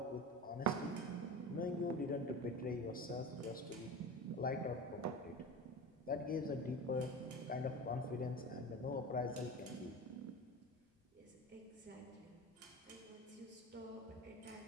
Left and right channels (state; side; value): normal; both; correlation 0.30